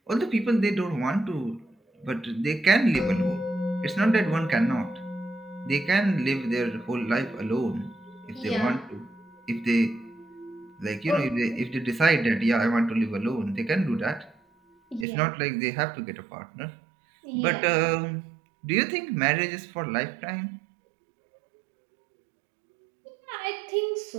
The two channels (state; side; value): drops out; left; at 15.1 s